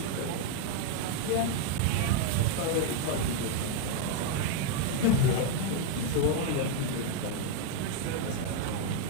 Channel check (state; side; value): different; both; correlation 0.01